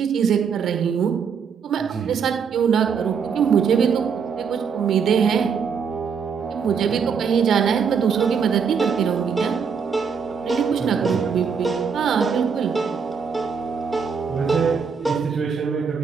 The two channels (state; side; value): quieter; left; 6.3 dB